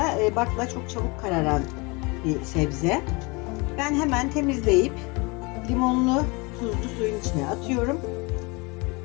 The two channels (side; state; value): right; quieter; 27.4 dB